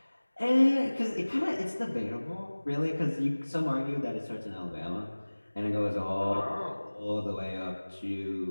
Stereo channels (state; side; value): inverted; both; correlation -1.00